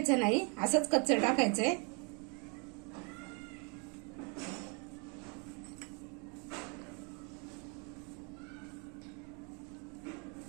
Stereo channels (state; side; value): quieter; left; 34.5 dB